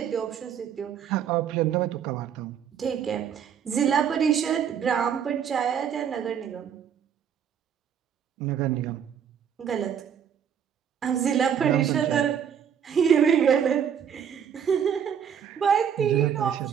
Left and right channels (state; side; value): quieter; left; 8.2 dB